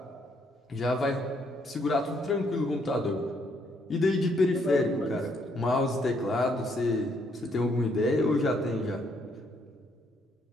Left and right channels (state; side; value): normal; both; correlation 0.71